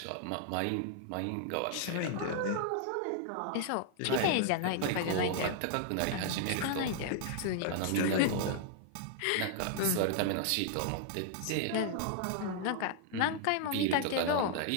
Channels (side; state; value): both; different; correlation -0.01